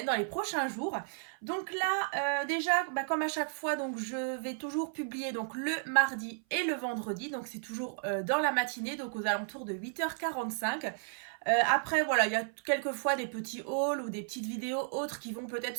dans les prochains jours. Donc là, déjà, comme à chaque fois, donc je vais toujours publier donc le mardi et le vendredi. Donc c'est toujours dans la matinée, donc aux alentours de 8h45. Après, voilà, il y a quelquefois des petits hauls ou des petites vidéos autres qui vont peut-être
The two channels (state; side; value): silent; left; 55 dB below the other